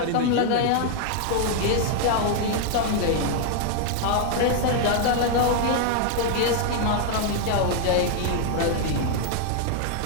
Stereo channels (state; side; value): different; both; correlation 0.00